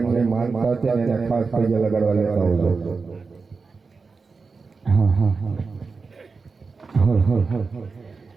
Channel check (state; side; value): quieter; left; 4.6 dB